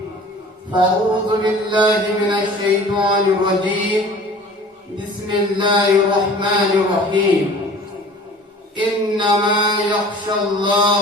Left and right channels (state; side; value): normal; both; correlation 0.45